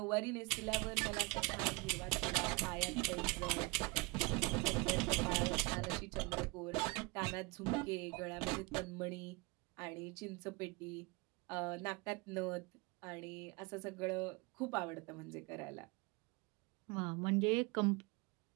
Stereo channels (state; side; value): quieter; left; 26.7 dB